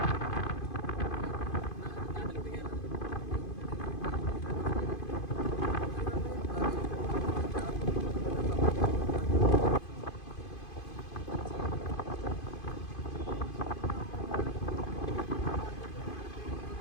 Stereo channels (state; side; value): late; right; 2.5 ms